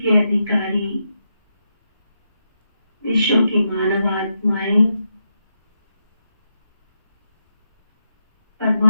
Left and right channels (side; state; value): both; inverted; correlation -0.84